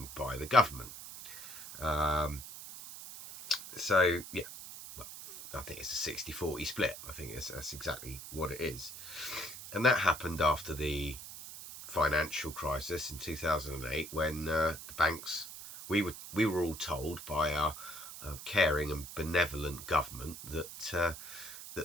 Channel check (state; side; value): noise; right; hiss, 12 dB below the sound